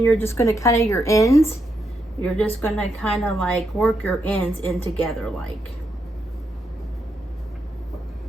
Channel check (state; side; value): normal; both; correlation 0.81